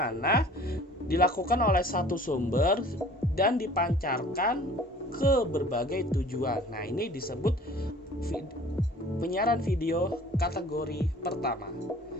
dilakukan oleh satu sumber dan dipancarkan ke berbagai tujuan. Nah, ini disebut penyiaran video kategori pertama.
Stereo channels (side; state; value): both; normal; correlation 0.49